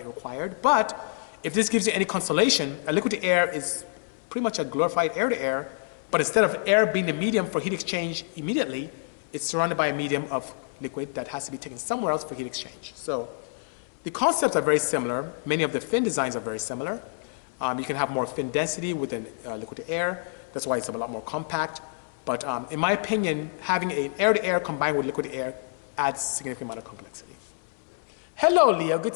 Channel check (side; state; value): right; silent; 60 dB below the other